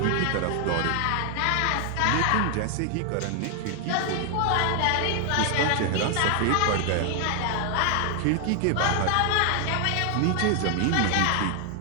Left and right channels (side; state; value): both; different; correlation 0.00